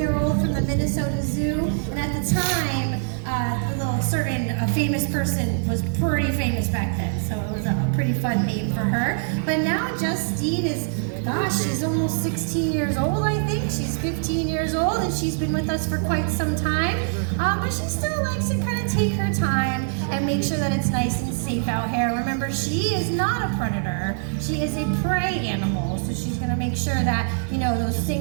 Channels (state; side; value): silent; left; digital silence